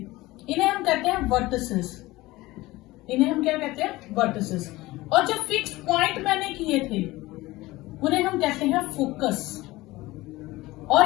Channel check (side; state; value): right; quieter; 19.3 dB